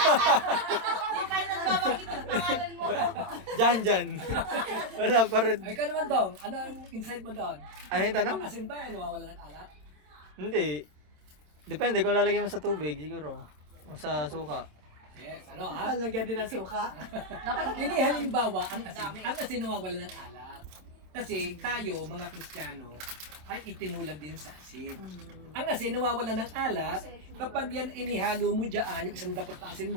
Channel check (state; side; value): late; left; 27 ms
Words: Di pa yung nagbabanggit ang pangalan mo. Jan. Wala pa rin. Ay, ikaw naman, Dong. Ano ang insight mo doon? Ano yung tanong? Ang asin ba ay nawawala ng alat? Hindi. Depende kung lalagay mo sa tubig siguro. O sa suka. Yes, ano ha? Lalagyan din ng suka. Dapat Hindi halimbawa, ang asin nawawala ng alat. Kasi tayo, mga Kristiyano, ay itinulad din sa asin. Ang asin nawawala ng alat kapag yan inihalo mo dyan, yung isang dapat na asin